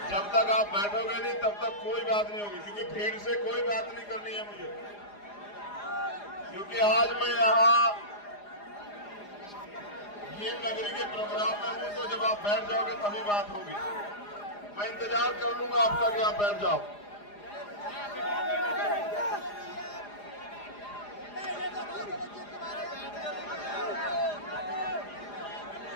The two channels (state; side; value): late; right; 4.9 ms